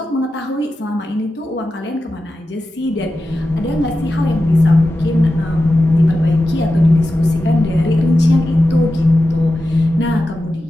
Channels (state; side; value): normal; both; correlation 0.92